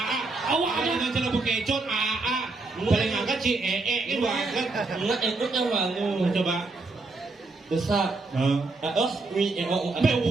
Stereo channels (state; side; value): quieter; left; 3.5 dB